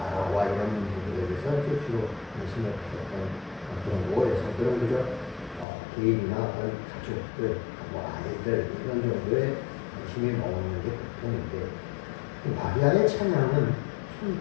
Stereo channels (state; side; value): drops out; right; at 5.7 s